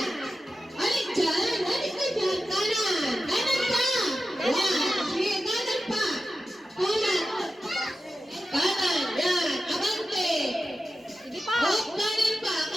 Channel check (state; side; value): normal; both; correlation 0.92